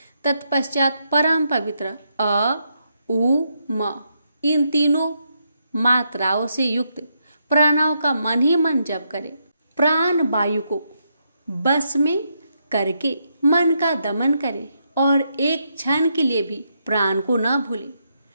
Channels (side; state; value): both; inverted; correlation -0.80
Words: तत्पश्चात परम पवित्र अ, उ, म इन तीनों मात्राओं से युक्त प्रणव का मन ही मन जप करे। प्राण वायु को बस में करके मन का दमन करे और एक क्षण के लिए भी प्राण को न भूले।